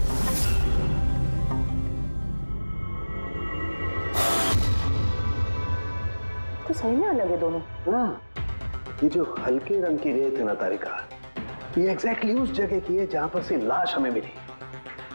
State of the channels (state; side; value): inverted; both; correlation -1.00